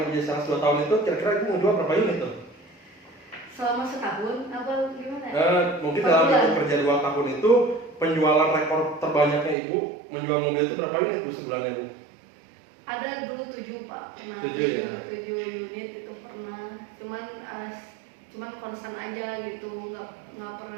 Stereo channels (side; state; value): left; drops out; at 9.6 s